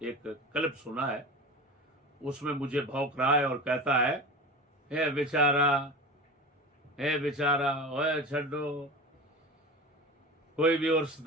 کلپ سنا ہے، اس میں مجھے بھونک رہا ہے اور کہتا ہے، اے بیچارہ، اے بیچارہ، اوے چھڈو، کوئی بھی عرص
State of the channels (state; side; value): normal; both; correlation 0.31